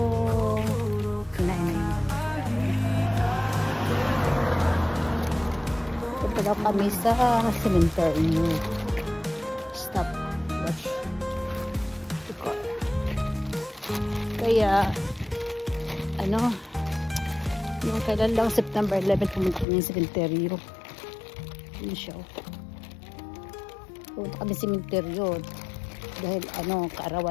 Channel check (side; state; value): right; drops out; at 19.7 s